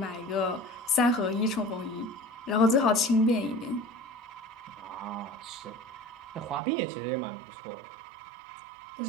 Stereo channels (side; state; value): left; drops out; at 6.6 s